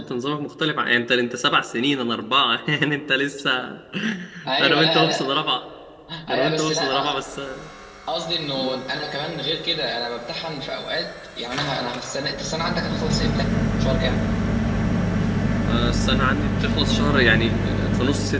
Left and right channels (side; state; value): both; identical; correlation 1.00